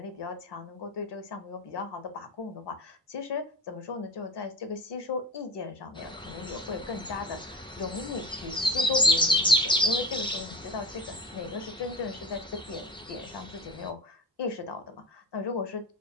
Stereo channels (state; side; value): normal; both; correlation 0.29